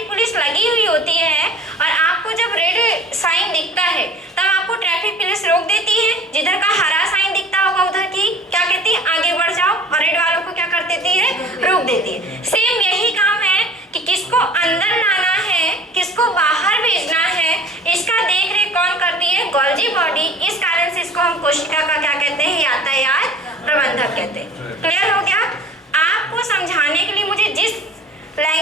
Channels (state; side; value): normal; both; correlation 0.45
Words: पुलिस लगी हुई होती है और आपको जब रेड साइन दिखता है तब आपको ट्रैफिक पुलिस रोक देती है, जिधर का हरा साइन दिखता होगा उधर की क्या कहती है, आगे बढ़ जाओ, और रेड वालों को क्या कर देती है, रोक देती है। सेम यही काम है कि किसको अंदर लाना है, किसको बाहर भेजना है, इसका देख रेख कौन करती है? Golgi body. इस कारण से इसको हम कोशिका का क्या कहते हैं? यातायात प्रबंधक कहते हैं। क्लियर हो गया? आपको समझाने के लिए मुझे जिस